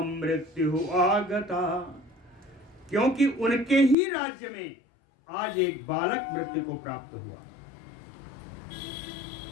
मृत्यु आगता, क्योंकि उनके ही राज्य में आज एक बालक मृत्यु को प्राप्त हुआ।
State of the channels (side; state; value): right; drops out; at 4.0 s